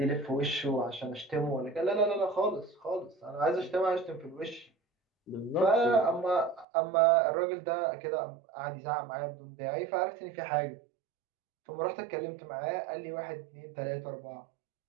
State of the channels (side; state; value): left; drops out; at 6.7 s